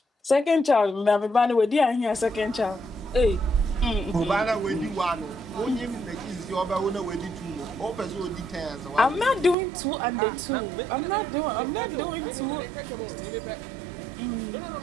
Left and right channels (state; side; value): drops out; left; at 9.6 s